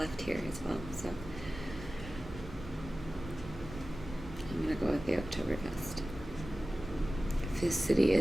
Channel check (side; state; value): both; normal; correlation 0.96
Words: here as well, so I'm gonna go with the Oktoberfest. This City